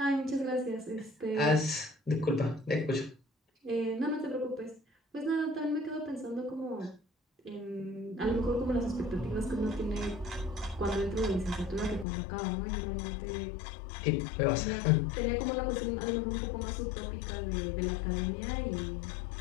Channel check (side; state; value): right; drops out; at 12.1 s